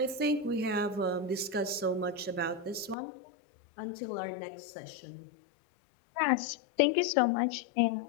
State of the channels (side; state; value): right; drops out; at 3.0 s